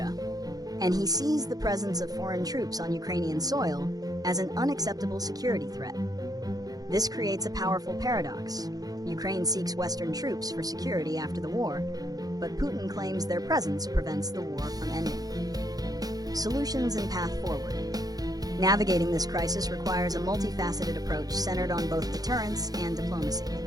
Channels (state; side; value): late; left; 0.18 ms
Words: and he sees the presence of foreign troops on Ukrainian soil as an unacceptable security threat. This creates a powerful paradox. Ukraine seeks Western troops for security after the war, but Putin claims their presence prevents the war from ending. Solutions and path forward. Navigating this crisis requires a multifaceted approach centered on both deterrence and diplomacy.